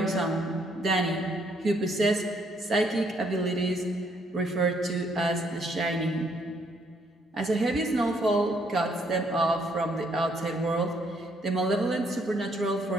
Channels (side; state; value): both; normal; correlation 0.69